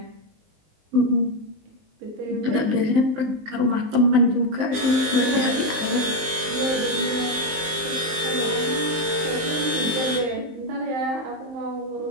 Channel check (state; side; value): late; left; 19 ms